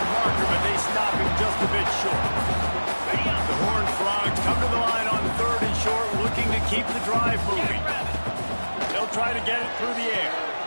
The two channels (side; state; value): both; inverted; correlation -1.00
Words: marker, but they stop him just a bit short. The Horned Frogs come to the line on 3rd and short, looking to keep the drive moving. They'll try to get it through the air.